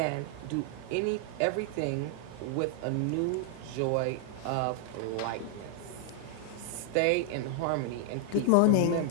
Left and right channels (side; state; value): both; different; correlation 0.00